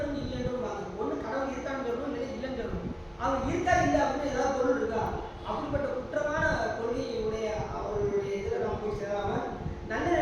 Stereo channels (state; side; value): identical; both; correlation 1.00